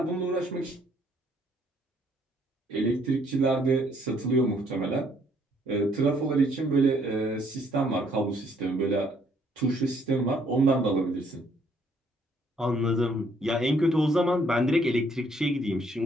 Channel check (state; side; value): normal; both; correlation 0.66